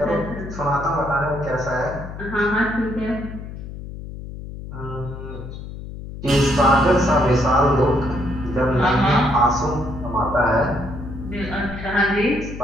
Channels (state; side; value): noise; left; hum, 11 dB below the sound